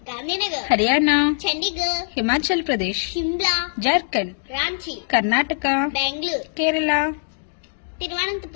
Gandhinagar, Haryana, Chandigarh, Himachal Pradesh, Shimla, Jharkhand, Ranchi, Karnataka, Bengaluru, Kerala,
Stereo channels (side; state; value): right; silent; digital silence